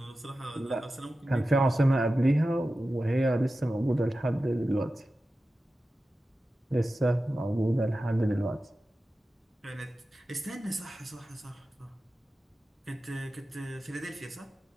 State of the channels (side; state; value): both; normal; correlation 0.94